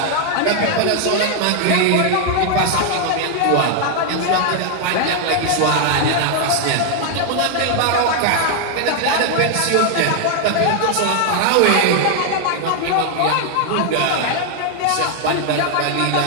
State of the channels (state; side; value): different; both; correlation 0.00